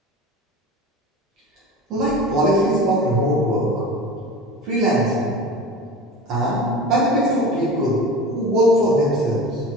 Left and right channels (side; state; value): both; normal; correlation 0.34